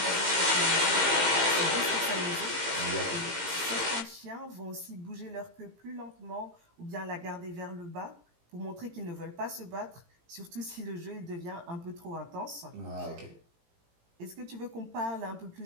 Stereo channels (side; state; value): left; late; 18 ms